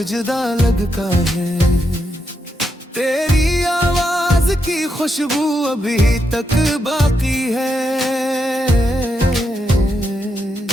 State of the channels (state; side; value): normal; both; correlation 0.82